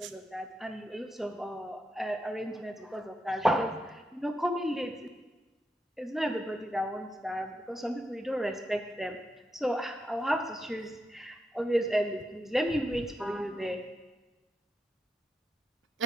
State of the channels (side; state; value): both; normal; correlation 0.85